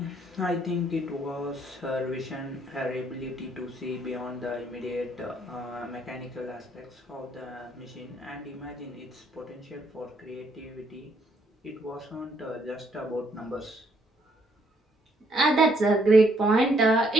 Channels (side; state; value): both; normal; correlation 0.69